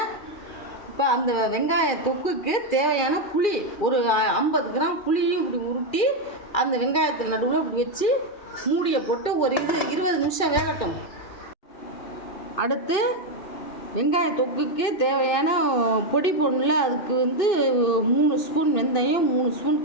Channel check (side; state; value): right; late; 2.4 ms